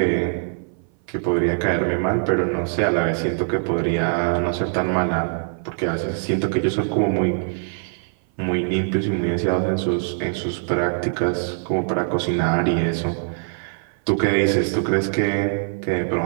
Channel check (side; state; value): left; silent; 57 dB below the other